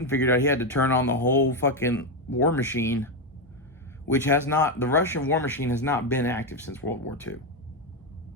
figured out he had to turn on the whole fucking war machine, which has not, the Russian war machine has not been active since World War II.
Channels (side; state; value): both; normal; correlation 0.08